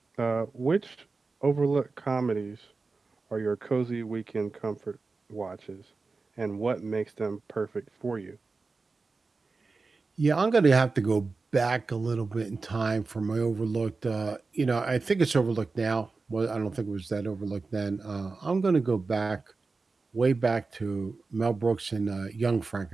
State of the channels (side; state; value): left; quieter; 4.0 dB